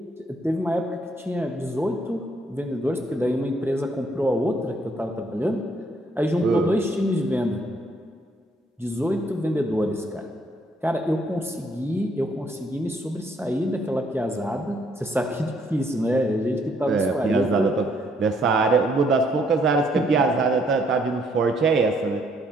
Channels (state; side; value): normal; both; correlation 0.69